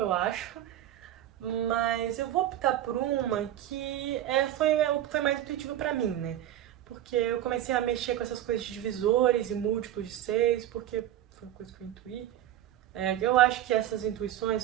acho. Mas eu vou optar por uma que foi mais intuitiva pra mim, né? Porque eu comecei a mexer com essas coisas de divisores e múltiplos de 6, porque foi uma coisa que eu intuí. Eu acho que essas intuições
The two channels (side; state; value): left; quieter; 12.2 dB